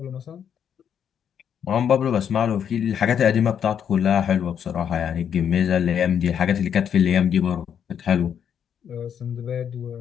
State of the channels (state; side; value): quieter; right; 8.4 dB